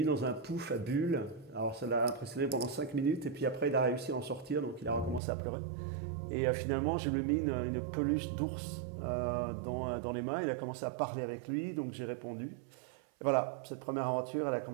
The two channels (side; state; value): left; drops out; at 5.2 s